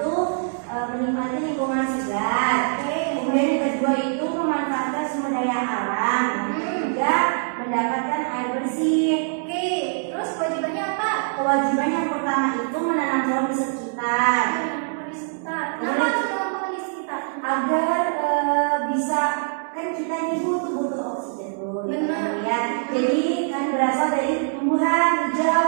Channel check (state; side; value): silent; left; digital silence